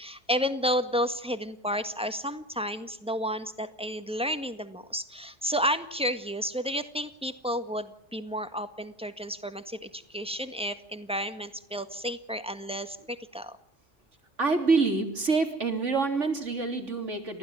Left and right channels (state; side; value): normal; both; correlation 0.40